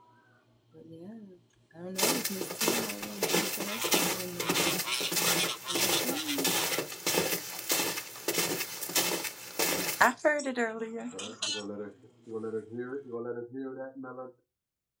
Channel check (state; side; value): identical; both; correlation 1.00